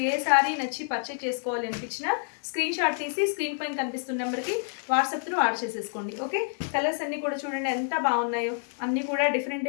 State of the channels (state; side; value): silent; right; 59 dB below the other